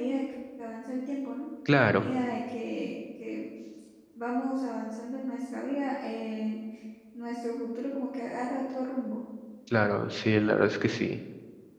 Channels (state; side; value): identical; both; correlation 1.00